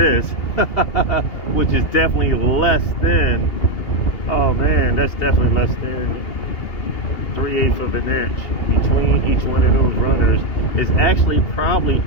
which is definitely less than, oh man, that's definitely less than 3/8 of an inch between each one of those runners. Is actually probably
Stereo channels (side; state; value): right; late; 2.8 ms